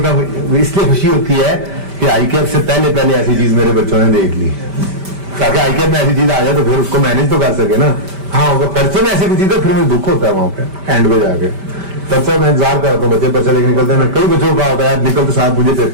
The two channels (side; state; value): left; late; 5.1 ms